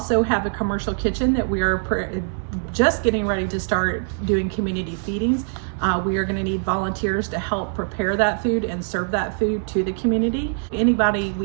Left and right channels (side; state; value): left; silent; 64 dB below the other